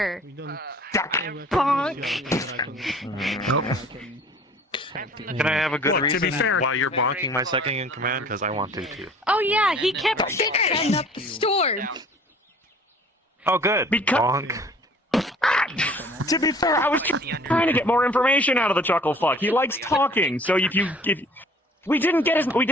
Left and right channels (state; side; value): normal; both; correlation 0.50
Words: bonk. Can I have a good Look, reason to be fair, why you're bonking my second in command? Because I want to too. Oh yeah, he kept setting up the storm. Oh, good. Bonk. To be fair, I was trying to get more information out of the chuckle fuck. He likes talking, so if we didn't get